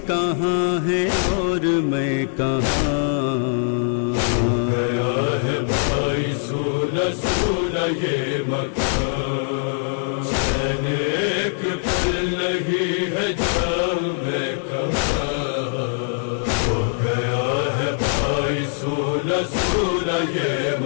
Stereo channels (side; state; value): right; silent; 64 dB below the other